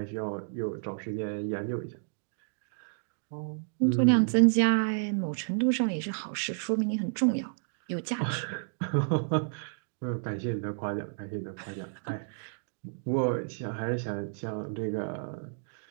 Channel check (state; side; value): silent; left; digital silence